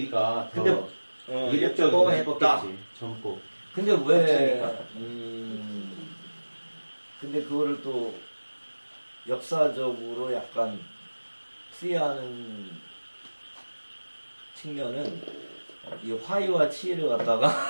근데 더 이국적으로 예뻤다. 예뻤겠지. 젊고. 근데 왜 근데 그거를 또 역사적으로 약간 풀이하는 측면은 이 화이와 치를 갖다가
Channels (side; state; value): both; inverted; correlation -1.00